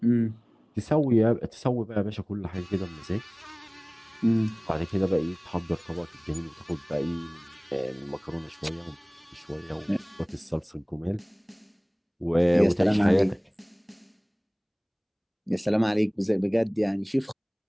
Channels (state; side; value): identical; both; correlation 1.00